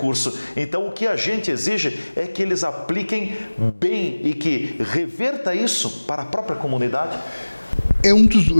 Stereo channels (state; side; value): inverted; both; correlation -1.00